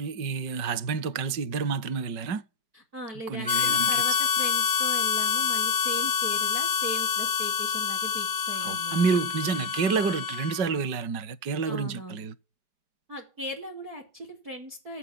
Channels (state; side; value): late; left; 5.3 ms